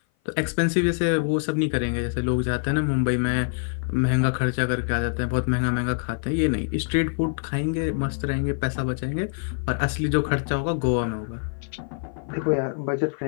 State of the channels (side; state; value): right; silent; 56 dB below the other